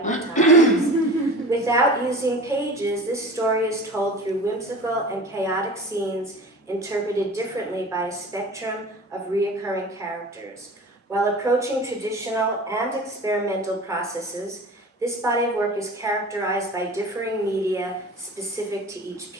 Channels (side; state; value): both; normal; correlation 0.37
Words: times. Without using pages, this story is told through whimsical and chaotic scenes interpreted differently by a spectrum of reoccurring characters. While approaching traditional and experimental processes, this body of work is characterized by differing media specific to each